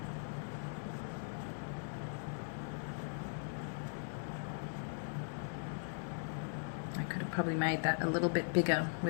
I could have probably made that a little bit bigger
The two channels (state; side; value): silent; right; digital silence